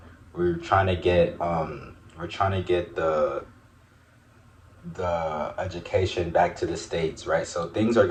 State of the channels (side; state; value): both; identical; correlation 1.00